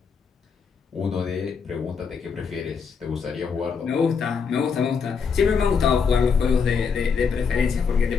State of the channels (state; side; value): quieter; right; 5.9 dB